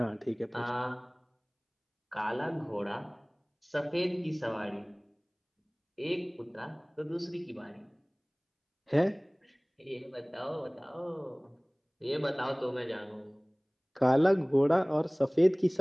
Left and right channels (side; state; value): both; identical; correlation 1.00